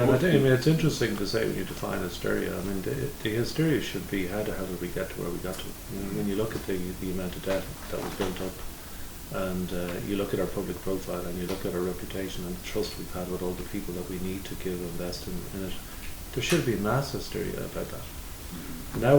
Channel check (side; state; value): both; identical; correlation 1.00